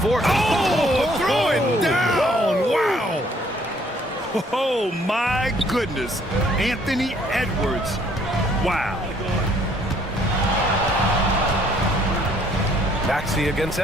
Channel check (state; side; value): normal; both; correlation 0.63